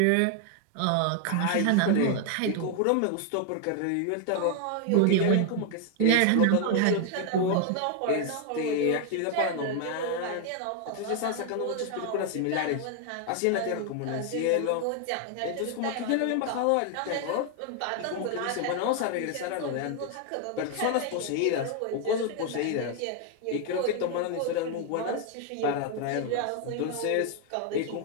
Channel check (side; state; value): both; different; correlation 0.00